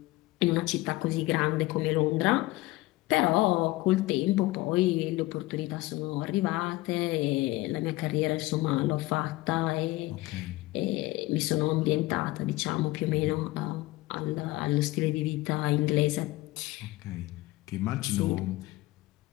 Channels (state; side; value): quieter; right; 19.4 dB